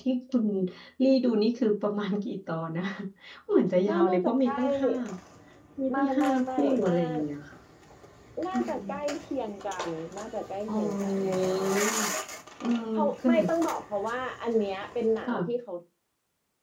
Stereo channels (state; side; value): identical; both; correlation 1.00